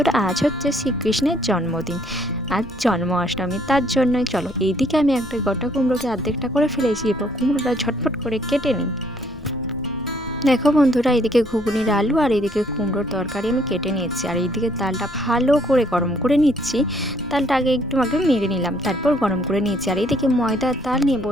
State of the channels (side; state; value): left; noise; rumble, 18 dB below the sound